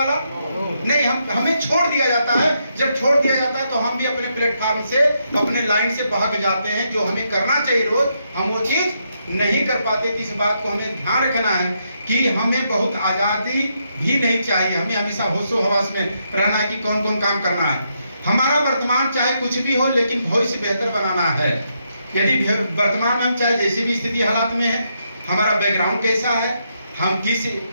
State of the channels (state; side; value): inverted; both; correlation -0.79